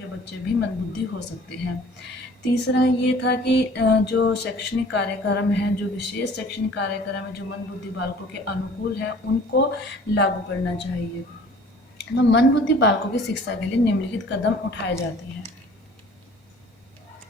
बच्चे भी मंद बुद्धि हो सकते हैं। तीसरा ये था कि जो शैक्षणिक कार्यक्रम है, जो विशेष शैक्षणिक कार्यक्रम है जो मंद बुद्धि बालकों के अनुकूल है, उनको लागू करना चाहिए। तो मंद बुद्धि बालकों की शिक्षा के लिए निम्नलिखित कदम उठाए जाते हैं।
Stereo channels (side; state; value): both; normal; correlation 0.49